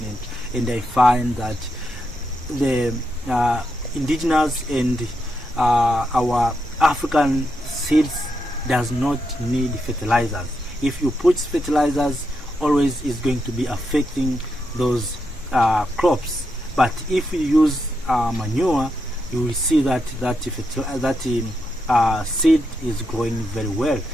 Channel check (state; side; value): normal; both; correlation 0.83